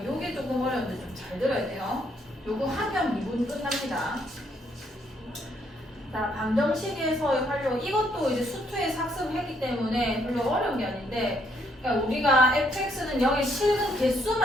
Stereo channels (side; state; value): both; normal; correlation 0.71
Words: 요게 조금 어려운데 좀 잘 들어야 돼요. 요거 하면 미분 끝납니다. 자, 방정식에서의 활용, 이것도 이제 수투에서 학습했기 때문에 별로 어려운 게 아닌데, 그러니까 우리가 fx는 0의 실근